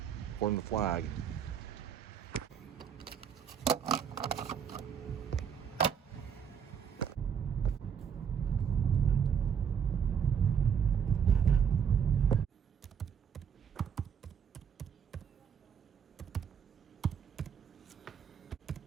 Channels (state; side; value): quieter; left; 7.6 dB